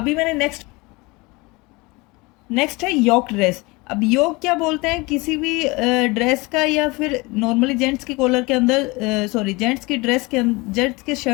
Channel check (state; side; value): quieter; right; 24.6 dB